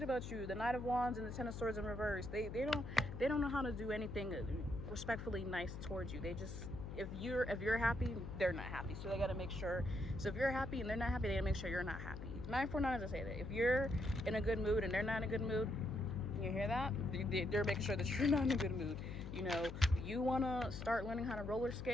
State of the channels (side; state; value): left; noise; hum, 8 dB below the sound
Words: about you. The Knight of Wands and the Ten of Swords in reverse. They don't know how to do anything respectfully nice towards you. They just, if you're happy, they're not happy. So they gotta make sure. So if you're happy and they're not happy, they gotta make sure you're not happy. 949 as I say that. If you're in a good mood and they're not in a good mood, you hear that? They're making sure that you're not in a good mood. You know, you wanna start learning how to roller